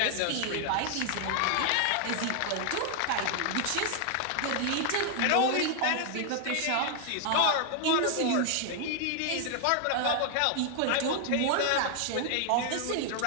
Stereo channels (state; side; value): different; both; correlation 0.00